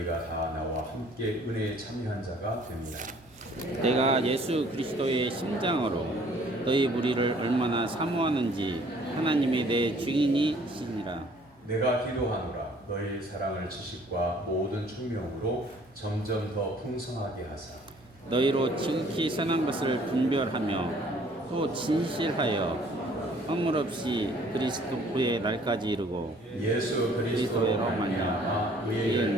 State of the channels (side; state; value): both; normal; correlation 0.57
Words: 다 나와 함께 은혜에 참여한 자가 됩니다. 내가 예수 그리스도의 심장으로 너희 무리를 얼마나 사모하는지 하나님이 내 증인이시니라. 내가 기도하노라 너희 사랑을 지식과 모든 총명으로 점점 더 풍성하게 하사 너희로 지극히 선한 것을 분별하며 또 진실하여 허물 없이 그리스도의 날까지 이르고 예수 그리스도로 말미암아 의의